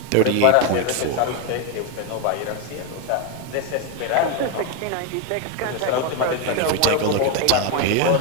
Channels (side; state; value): both; different; correlation 0.02